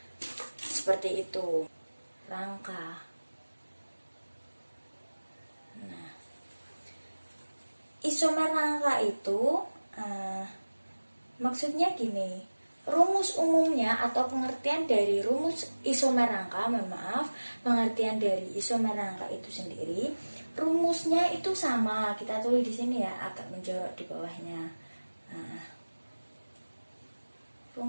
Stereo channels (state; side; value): inverted; both; correlation -1.00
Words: seperti itu. Rangka. Nah, isomer rangka itu maksudnya gini. Rumus umumnya atau pengertian dari rumus isomer rangka, pengertian dari isomer rangka itu sendiri, rumusnya itu sama. Kita tulis di sini ya, agak menjorok di bawahnya. Nah,